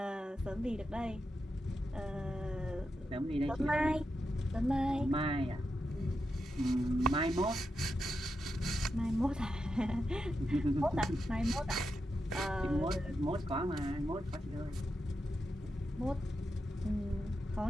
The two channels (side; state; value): both; normal; correlation 0.87